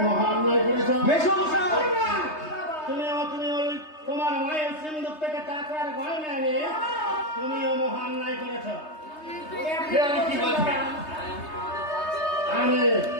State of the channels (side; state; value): right; late; 3.2 ms